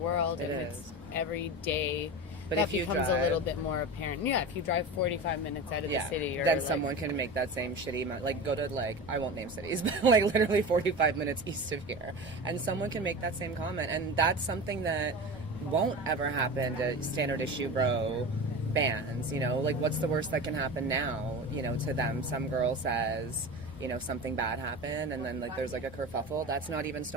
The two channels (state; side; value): normal; both; correlation 0.29